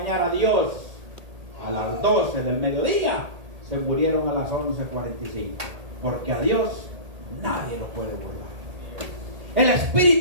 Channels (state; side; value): late; left; 1.8 ms